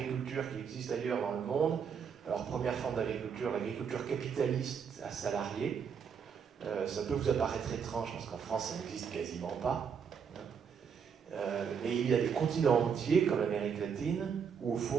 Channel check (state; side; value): quieter; left; 6.8 dB